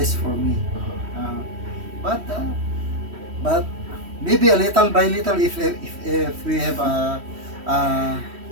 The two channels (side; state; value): left; late; 3.1 ms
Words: for me. But maybe a little by little if we have